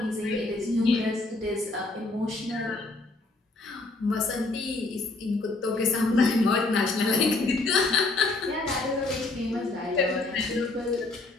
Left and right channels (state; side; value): quieter; right; 3.2 dB